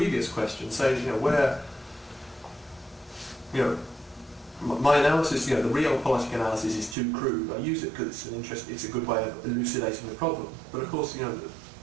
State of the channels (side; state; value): left; drops out; at 7.0 s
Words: question. So, my analysis, the realpolitik analysis is too crude. I use it because it's a good way of elucidating the problem. But of course,